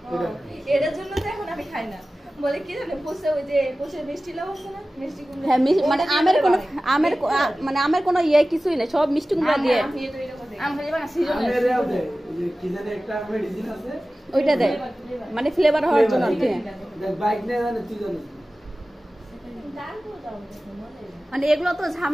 এটার জন্য তো এখন আমি খাই না বলে কি জানে পোষে ওই যে পোষে মিষ্টি লাউ আছে না মিষ্টি কুমড়া হ্যাঁ মানে আমের কোনো ইয়ে কিছুই না সব মিষ্টি কুমড়া দিয়ে ওইটা দেয় মানে ফ্লেভার হওয়ার জন্য আর কি মানে এগুলো তো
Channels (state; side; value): normal; both; correlation 0.96